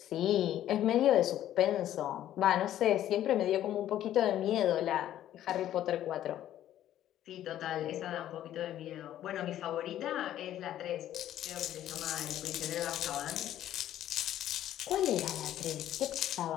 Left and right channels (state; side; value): quieter; right; 12.2 dB